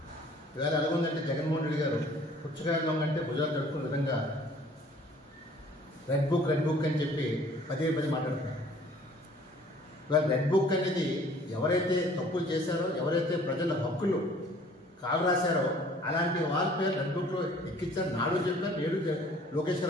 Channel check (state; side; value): normal; both; correlation 0.53